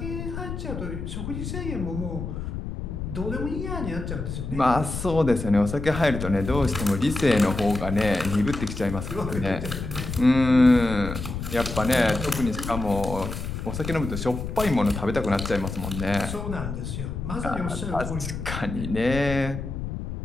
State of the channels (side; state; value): left; noise; rumble, 6 dB below the sound